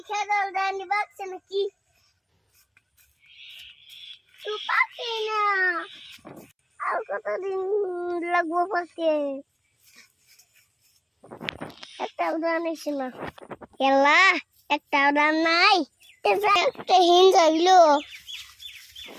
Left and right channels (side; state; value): both; identical; correlation 1.00